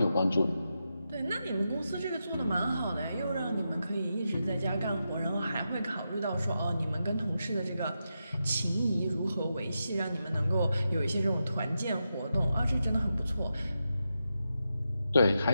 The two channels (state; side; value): inverted; both; correlation -0.87